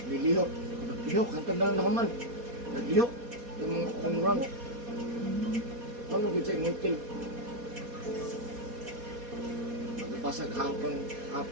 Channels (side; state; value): left; late; 4.2 ms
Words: lilihok. Naglihok, hantang na lang naman. Naglihok. Yung mga kunrang. Ano gito yung ngipil? Magpasag